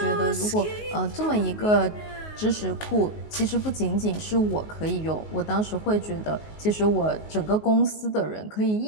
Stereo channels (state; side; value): late; right; 19 ms